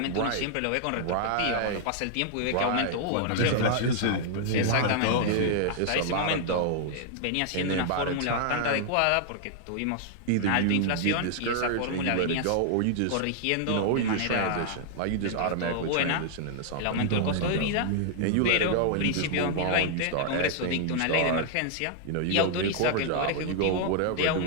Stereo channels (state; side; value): different; both; correlation -0.01